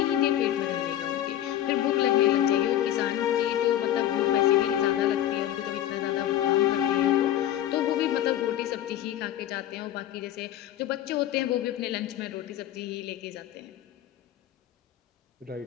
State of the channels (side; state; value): right; quieter; 12.3 dB